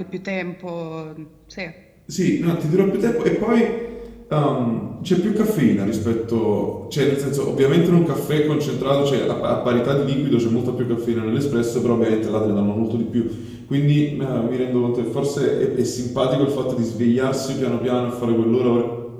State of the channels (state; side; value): identical; both; correlation 1.00